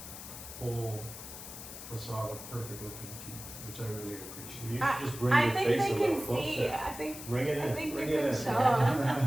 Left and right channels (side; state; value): left; noise; hiss, 11 dB below the sound